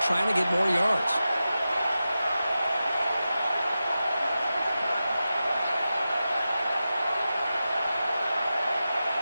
to get more yards.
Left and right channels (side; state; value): both; inverted; correlation -0.92